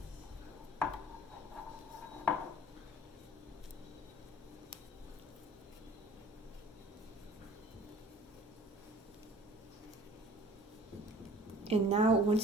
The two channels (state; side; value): normal; both; correlation 0.48